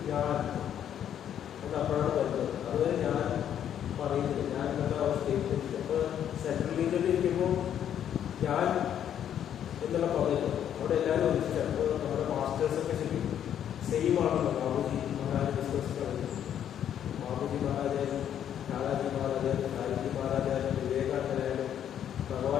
ഞാൻ എന്ന് അപ്പോഴാണ് വരുന്നത്. അതുവരെ ഞാൻ പറയുന്നില്ല, ഞാൻ എന്നുള്ള അവസ്ഥയിൽ. അപ്പോൾ സെൻട്രൽ ലീഗിൽ ഇരിക്കുമ്പോൾ ഞാൻ എന്നുള്ള പദം അവിടെ എല്ലാവരും ഒന്നിച്ചാണ്. അപ്പോൾ നമ്മുടെ മാസ്റ്റേഴ്സൊക്കെ ശരിക്കും സെയിം ആണല്ലോ. ബാബുജി മഹാരാജ് ഡിസ്കസ് കളഞ്ഞു. ബാബുജി മഹാരാജായാലും ലാലാജി മഹാരാജായാലും ലാൽജി മഹാരാജായാലും വിവേകാനന്ദനായാലും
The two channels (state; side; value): quieter; right; 9.8 dB